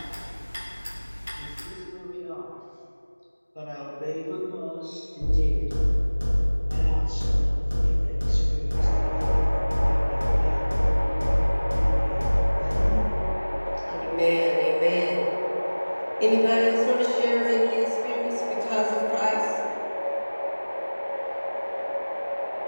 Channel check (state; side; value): inverted; both; correlation -1.00